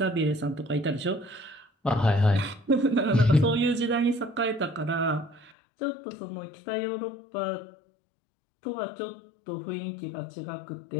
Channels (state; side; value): drops out; right; at 5.6 s